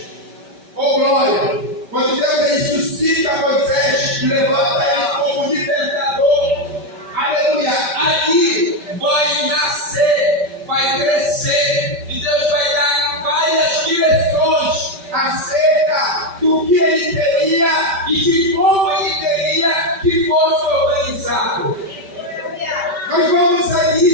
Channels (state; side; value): late; left; 5.2 ms